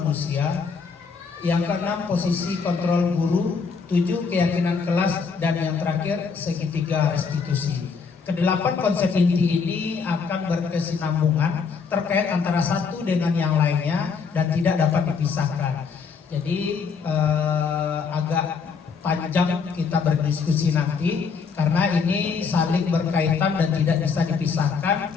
Yang keenam posisi kontrol guru. 7 keyakinan kelas, dan yang terakhir segitiga restitusi. Kedelapan konsep inti ini akan berkesinambungan terkait antara satu dengan yang lainnya dan tidak dapat dipisahkan. Jadi agak panjang kita berdiskusi nanti karena ini saling berkaitan dan tidak bisa dipisahkan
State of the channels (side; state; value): right; quieter; 5.5 dB